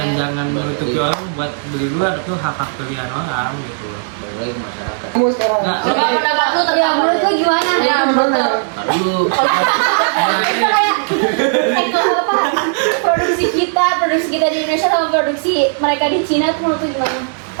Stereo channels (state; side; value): silent; left; digital silence